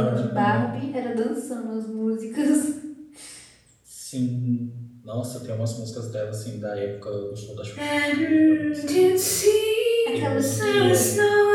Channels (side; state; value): both; identical; correlation 1.00